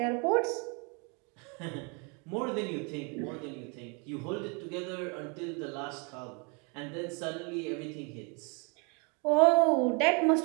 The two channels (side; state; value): left; quieter; 33.6 dB